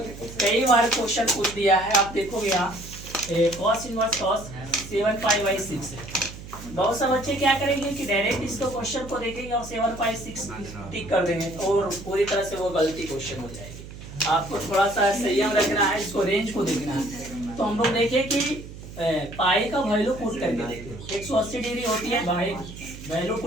कई बार क्वेश्चन पूछ दिया है। आप देखोगे यहाँ cos इनवर्स cos 7π/6 है। बहुत से बच्चे क्या करेंगे कि डायरेक्ट इसको क्वेश्चन को देखेंगे और 7/6 टिक कर देंगे और पूरी तरह से वो गलती क्वेश्चन हो जाएगी। आपको थोड़ा सा संयम रखना है, इसको रेंज को देखना है। तो हम लोग देखें कि पाई का वैल्यू पुट करके देखें 180 डिग्री होती है, भाई वैल्यू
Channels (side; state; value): right; noise; hum, 14 dB below the sound